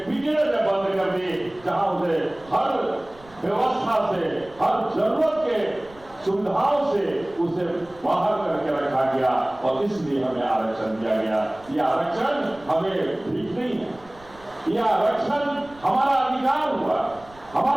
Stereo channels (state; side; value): noise; right; rumble, 25 dB below the sound